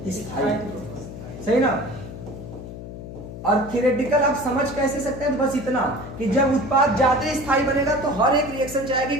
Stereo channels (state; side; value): noise; left; hum, 11 dB below the sound